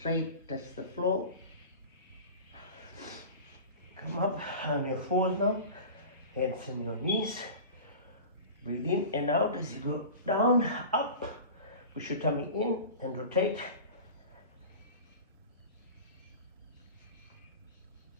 touch the floor. Come up on your fours now, hands on your knees. Breathe in and out as you go down, up. Push your tummy in and rotate.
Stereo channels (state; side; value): inverted; both; correlation -0.34